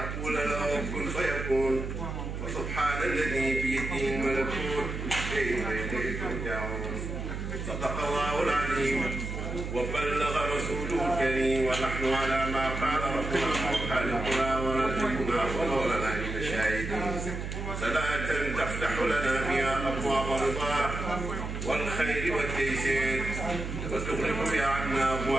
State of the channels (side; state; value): right; noise; hum, 5 dB below the sound